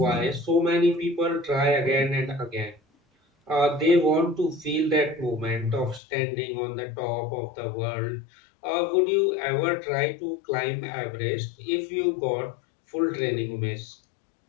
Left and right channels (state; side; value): drops out; right; at 6.0 s